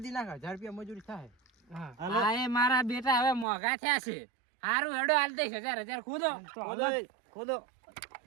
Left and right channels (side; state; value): left; drops out; at 3.5 s